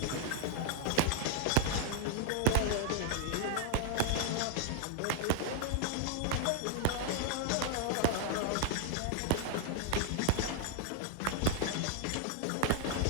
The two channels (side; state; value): both; different; correlation 0.00